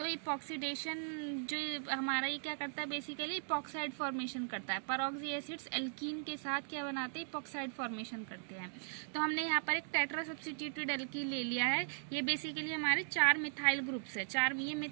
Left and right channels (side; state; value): left; silent; digital silence